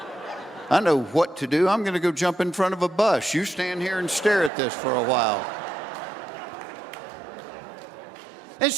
I know what to do. I'm going to go jump in front of a bus. You stand here and stare at this for a while. And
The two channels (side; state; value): left; drops out; at 4.5 s